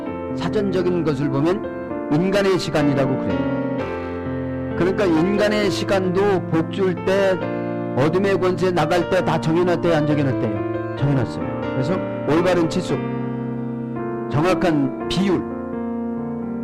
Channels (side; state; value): both; identical; correlation 1.00